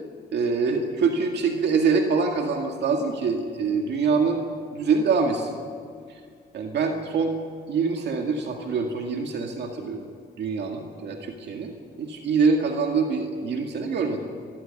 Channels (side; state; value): left; quieter; 4.4 dB